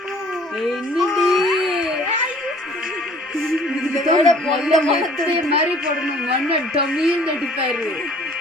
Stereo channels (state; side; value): normal; both; correlation 0.53